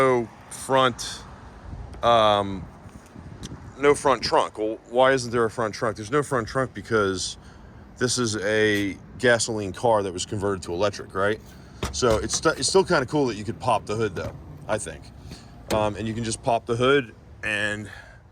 front trunk. Well, why isn't there a front trunk? There's no front trunk because this is a gasoline car that was converted to electric, right? So it's still kind of cool that you could pop the hood, though, I think. And you can just pop the hood, and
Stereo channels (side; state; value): both; identical; correlation 1.00